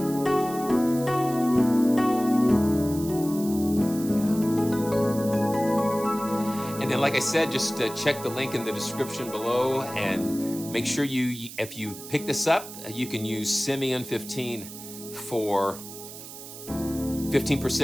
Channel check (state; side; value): noise; right; hiss, 13 dB below the sound